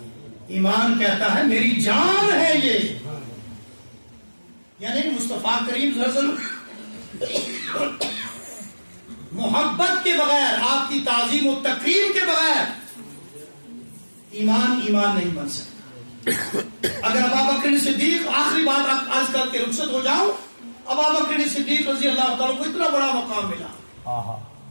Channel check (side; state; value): both; inverted; correlation -1.00